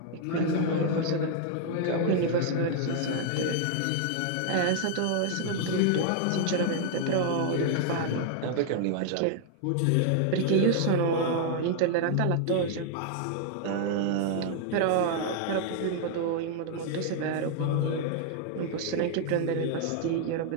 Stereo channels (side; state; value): both; different; correlation 0.00